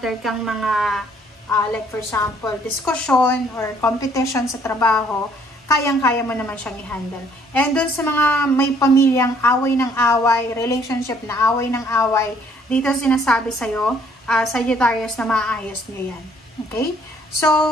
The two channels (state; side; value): normal; both; correlation 0.63